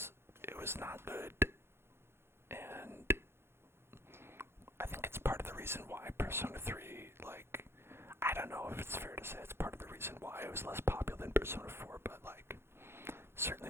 not good, and I think it's part Persona 3, like, I don't know if it's fair to say it's part of the reason why it was less popular than Persona 4, but like,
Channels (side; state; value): left; late; 0.12 ms